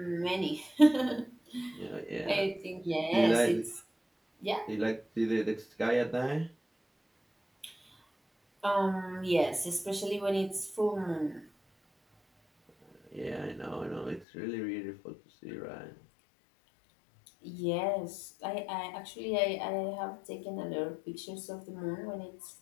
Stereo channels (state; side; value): drops out; right; at 14.2 s